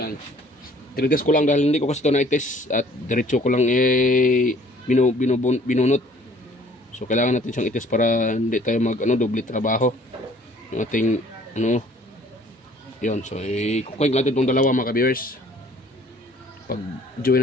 tinitest ko lang dahil hindi ko kasi ito na-test at diretso ko lang binunot. So kailangan natin siyang itest para hindi tayo doble trabaho. Yung ating yun. So i-connect natin itong dalawa mga ka-viewers. Pag join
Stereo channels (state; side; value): normal; both; correlation 0.56